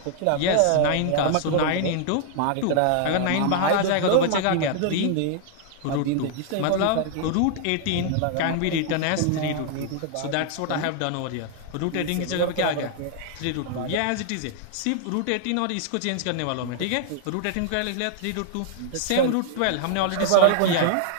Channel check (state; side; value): different; both; correlation 0.00